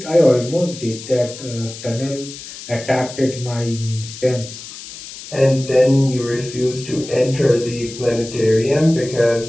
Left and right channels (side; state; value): left; noise; hiss, 13 dB below the sound